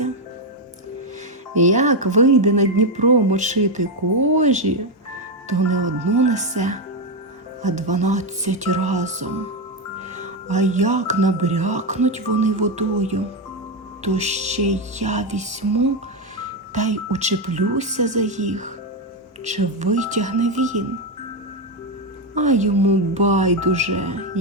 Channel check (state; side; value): normal; both; correlation 0.07